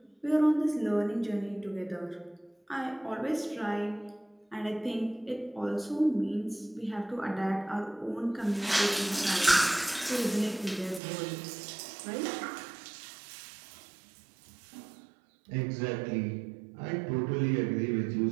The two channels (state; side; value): drops out; left; at 11.0 s